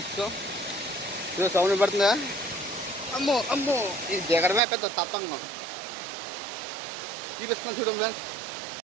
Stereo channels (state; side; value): drops out; left; at 4.6 s